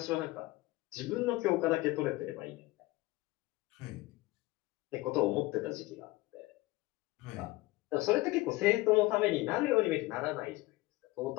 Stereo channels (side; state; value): right; quieter; 19.9 dB